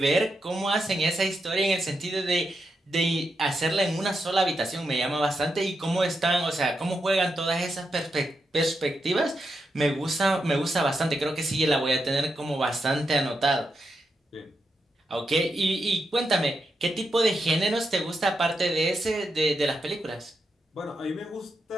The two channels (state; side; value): normal; both; correlation 0.85